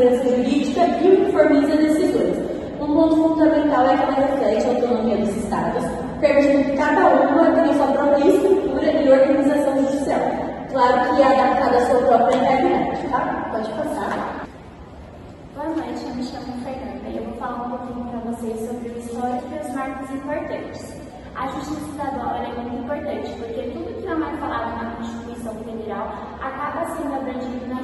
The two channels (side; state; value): both; identical; correlation 1.00